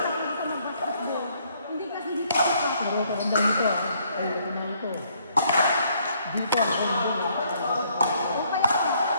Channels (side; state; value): both; inverted; correlation -0.67